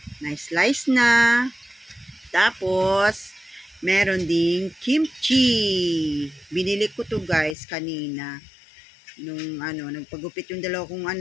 Na slice na. Tapos, meron ding kimchi. Binili ko to guys kanina. Nung nagpagupit yung dalawa kong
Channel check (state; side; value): drops out; right; at 7.6 s